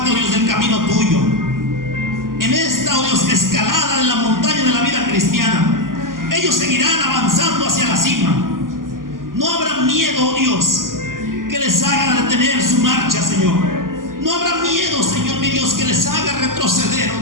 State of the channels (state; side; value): late; left; 0.91 ms